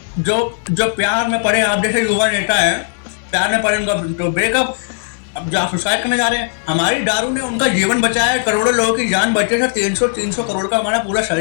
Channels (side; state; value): right; silent; 59 dB below the other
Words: जो प्यार में पड़े, आप जैसे युवा नेता है, प्यार में पड़े उनका तो ब्रेकअप, अब जो आप सुसाइड करने जा रहे हैं। हमारी दारू ने उनका जीवन बचाया है, करोड़ों लोगों की जान बचे सर। 300 करोड़ का हमारा पूरा